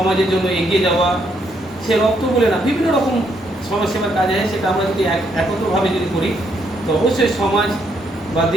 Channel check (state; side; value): normal; both; correlation 0.74